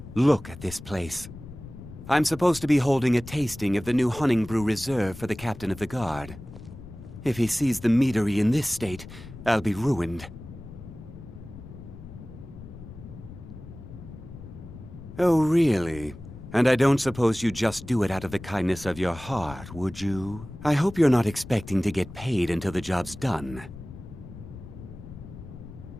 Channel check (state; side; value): noise; left; rumble, 14 dB below the sound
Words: Look at this place. I'm supposed to be holding a tasting of the new Honningbrew Reserve for the Captain of the Guard. If he sees the meadery in this state, I'll be ruined. Oh, really? And I don't suppose you just do it out of the kindness of your heart, would you? I hope you're not expecting to get paid until the job's done.